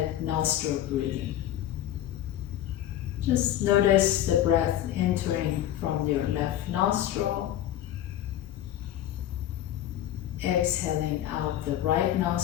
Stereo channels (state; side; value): quieter; right; 12.2 dB